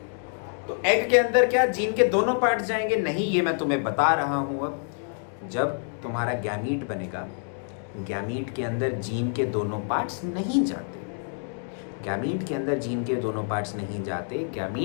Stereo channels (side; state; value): right; silent; 58 dB below the other